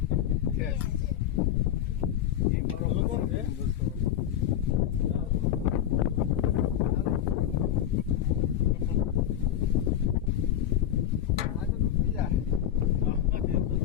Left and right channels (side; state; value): right; quieter; 10.8 dB